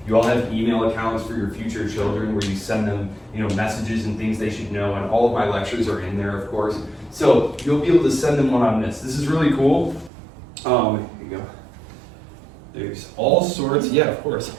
You all have email accounts for your future children where you send them, messages and things they should know, and all of my lectures are in there, of course. So you'll be able to send them one on this. This is really cool. Here you go. There's all sorts,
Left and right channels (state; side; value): drops out; left; at 10.1 s